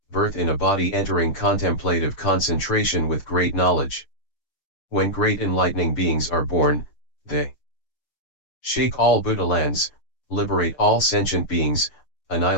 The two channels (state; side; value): late; right; 6.7 ms